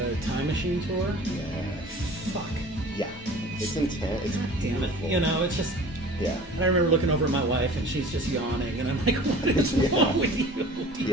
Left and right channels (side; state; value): both; normal; correlation 0.43